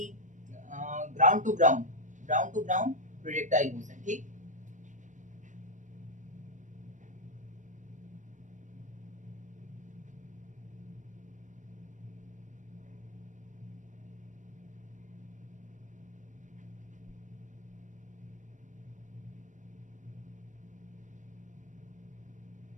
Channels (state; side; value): late; left; 0.36 ms